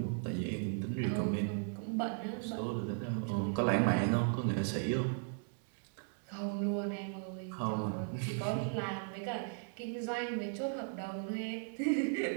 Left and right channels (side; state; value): left; silent; 53 dB below the other